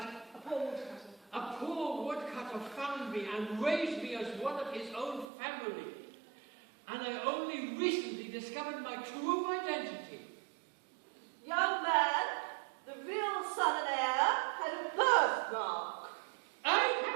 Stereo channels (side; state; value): left; drops out; at 5.2 s